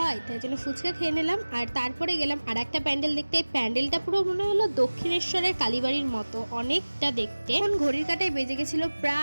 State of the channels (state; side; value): inverted; both; correlation -1.00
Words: তাই জন্য ফুচকা খেয়ে নিলাম। আর তারপরে গেলাম আর একটা প্যান্ডেল দেখতে। এই প্যান্ডেলটা পুরো মনে হলো দক্ষিণেশ্বরের কালীবাড়ির মতো, অনেকটা দেখতে। এখন ঘড়ির কাঁটায় বেজে গেছিলো